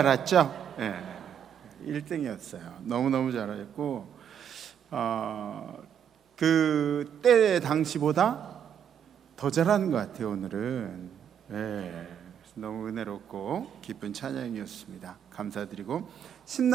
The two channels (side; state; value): left; quieter; 8.7 dB